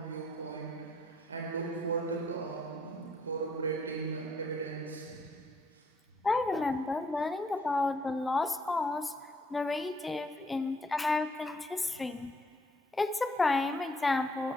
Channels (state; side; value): normal; both; correlation 0.68